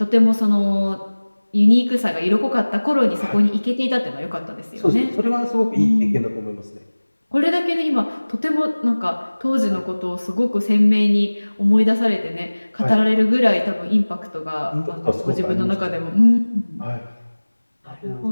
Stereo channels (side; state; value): both; inverted; correlation -1.00